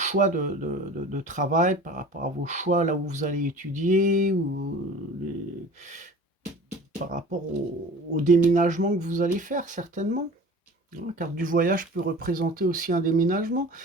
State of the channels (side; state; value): both; normal; correlation 0.41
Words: de travail, par rapport à vos choix là où vous allez étudier, ou par rapport au déménagement que vous allez faire certainement. La carte du voyage peut représenter aussi un déménagement.